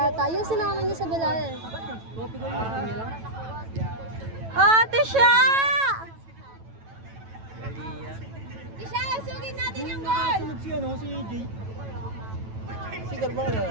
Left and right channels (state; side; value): late; left; 9.1 ms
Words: yung sinama niya sa Bilal. Ate siya! Isha, sugin natin yung goal! Sunod si ano, si Jay. Si Carvalho.